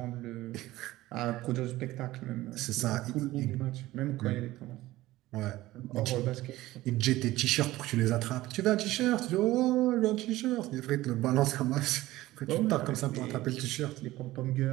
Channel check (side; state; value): left; quieter; 17.0 dB